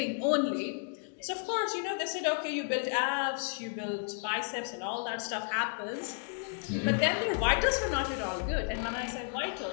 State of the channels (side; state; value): right; silent; 56 dB below the other